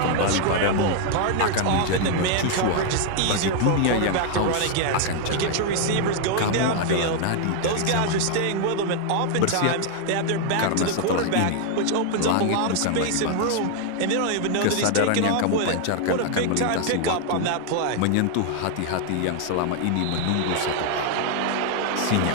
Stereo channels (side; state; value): both; different; correlation 0.00